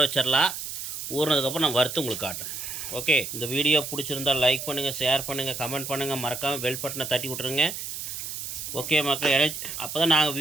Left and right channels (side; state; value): right; noise; hiss, 7 dB below the sound